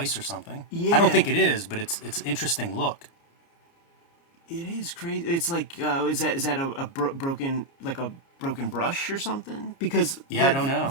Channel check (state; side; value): late; right; 29 ms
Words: or something. Yeah. I don't think it is, but it's an interesting look. It is crazy. It's like, is that a broken brush or something? Because I don't know.